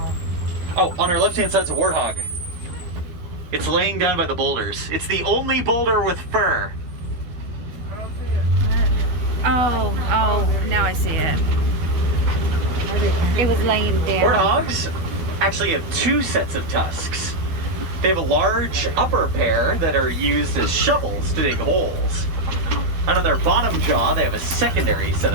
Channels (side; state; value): left; late; 12 ms